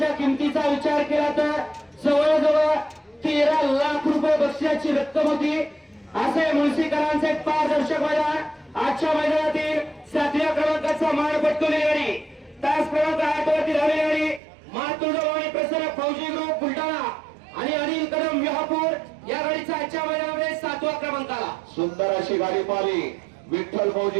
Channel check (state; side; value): drops out; left; at 14.4 s